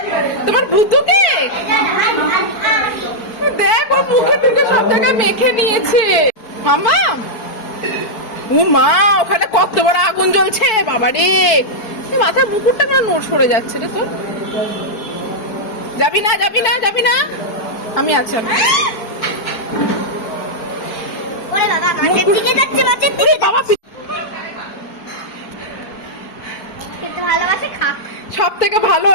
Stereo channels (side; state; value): right; late; 4.6 ms